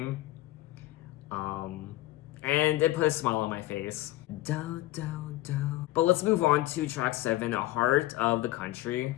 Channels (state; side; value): quieter; right; 17.2 dB